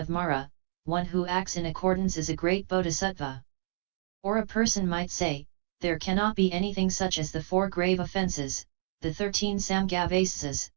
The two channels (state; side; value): silent; left; 58 dB below the other